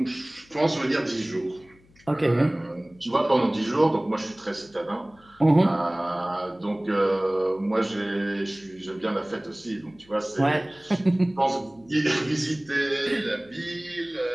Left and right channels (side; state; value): left; noise; hum, 29 dB below the sound